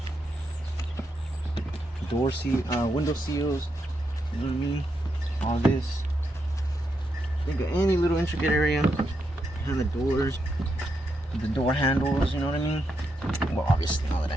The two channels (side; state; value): both; normal; correlation 0.82